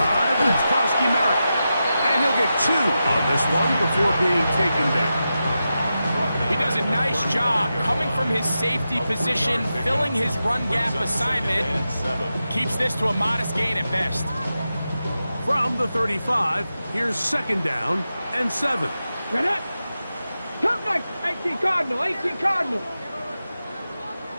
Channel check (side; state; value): both; inverted; correlation -0.90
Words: and it's Krosky Merritt. And he'll get 2 on this one before being taken down. He does a nice job coming from his safety position, filling his run gap assignment. Keeps this to a modest gain at best. From the 35, here's 2nd down and 7. Ready? Come back, 18 Cardinal, 18 Cardinal.